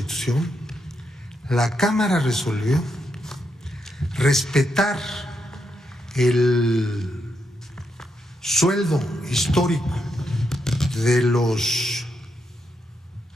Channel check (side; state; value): both; normal; correlation 0.82